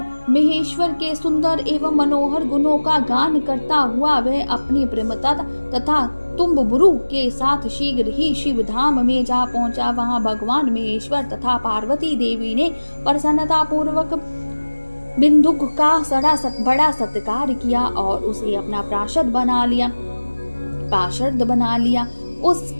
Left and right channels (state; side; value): inverted; both; correlation -1.00